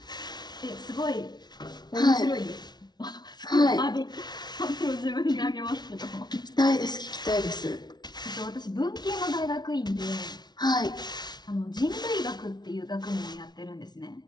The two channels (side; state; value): right; late; 0.20 ms